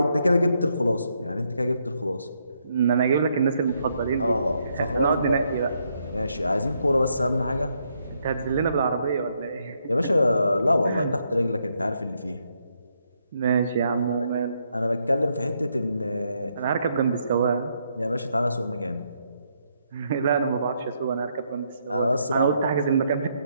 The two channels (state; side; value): inverted; both; correlation -0.76